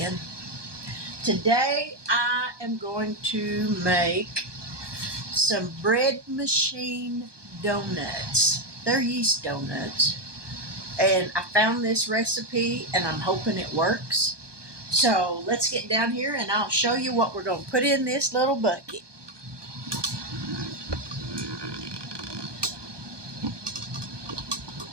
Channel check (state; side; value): late; left; 1.2 ms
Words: Today, I am going to make some bread machine donuts. They're yeast donuts. And I found this recipe, and I'm hoping it works. So let's get down here, and I'll show you what we're going to put in this little bucket.